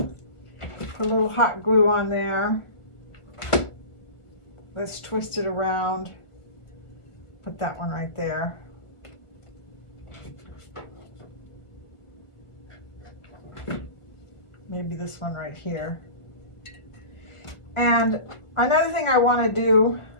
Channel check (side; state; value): right; late; 1.5 ms